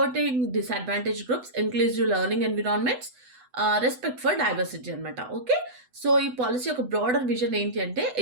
disadvantaged groups, inclusive learning environments, respect for diversity అనమాట. Okay, so ఈ పాలసీ ఒక broader vision ఏంటి అంటే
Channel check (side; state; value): left; late; 8.0 ms